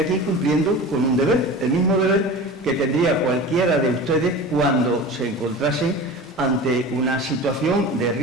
cumpliendo con un deber, el mismo deber que tendría cualquiera de ustedes cuando se encontrasen ante una situación de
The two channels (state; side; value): normal; both; correlation 0.34